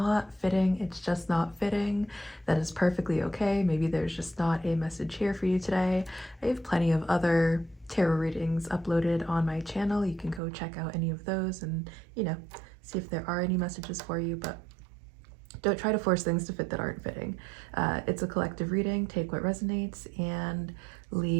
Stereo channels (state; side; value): drops out; left; at 10.4 s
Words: fitting, it's just not fitting. That is perfectly okay. Maybe there's just not a message here for you today. I have plenty of other tarot readings uploaded on my channel. You can go check out any of those and, see if there are any messages for you, but don't try to force things to fit that aren't fitting. It's a collective reading. Take what resonates and